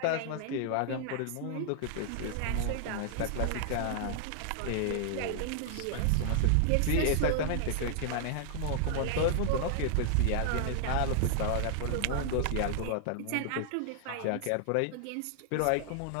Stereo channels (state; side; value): different; both; correlation -0.01